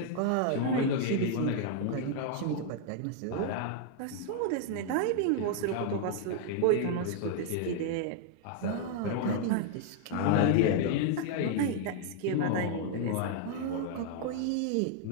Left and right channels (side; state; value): both; different; correlation 0.00